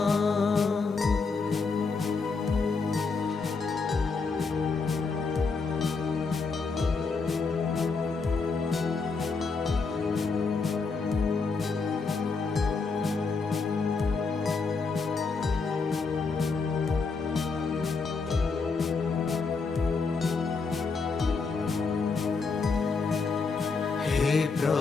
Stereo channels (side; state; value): right; quieter; 4.4 dB